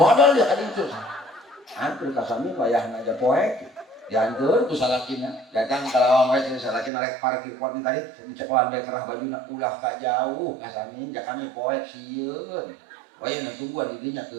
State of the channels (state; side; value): drops out; left; at 6.9 s